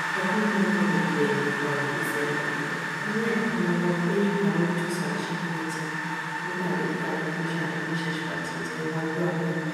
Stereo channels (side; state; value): both; identical; correlation 1.00